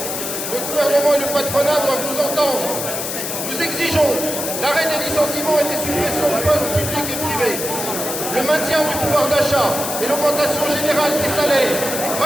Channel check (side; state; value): left; noise; hiss, 4 dB below the sound